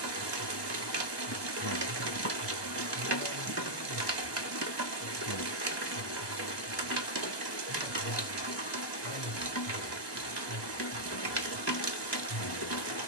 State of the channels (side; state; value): right; late; 1.2 ms